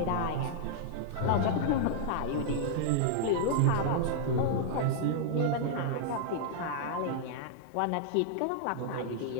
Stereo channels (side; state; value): both; different; correlation -0.01